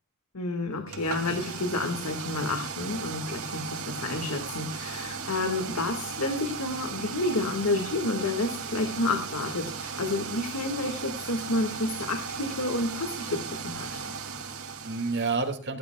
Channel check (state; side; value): normal; both; correlation 0.13